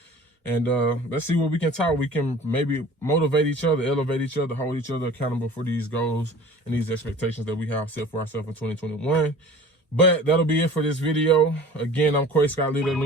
And let's see what we can talk. We can maybe motivate each other, elevate each other, hold each other accountable for these goals and these expectations that we have set for ourselves in 2021. But that'll be it for this video. Again, I'm Quay Scott, leader of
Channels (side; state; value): both; normal; correlation 0.43